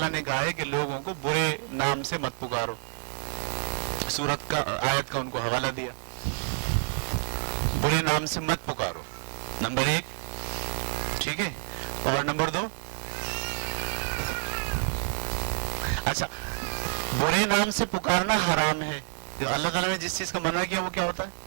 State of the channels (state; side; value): silent; left; digital silence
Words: نے کہا ہے کہ لوگوں کو برے نام سے مت پکارو، سورت کا آیت کا ان کو حوالہ دیا، برے نام سے مت پکارو، نمبر 1، ٹھیک ہے. اور نمبر 2، اچھا برے نام سے پکارنا حرام ہے. جو اللہ تعالیٰ نے جس چیز کا منع کیا وہ کیا ہوتا